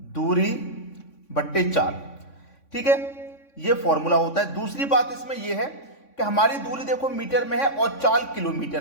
दूरी बट्टे चाल, ठीक है। ये फॉर्मूला होता है। दूसरी बात इसमें यह है कि हमारी दूरी देखो मीटर में है और चाल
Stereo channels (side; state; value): right; late; 3.6 ms